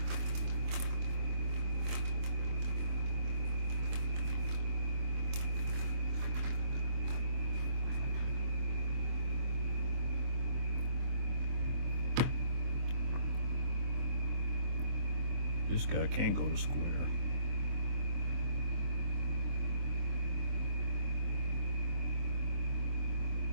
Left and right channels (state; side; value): late; left; 24 ms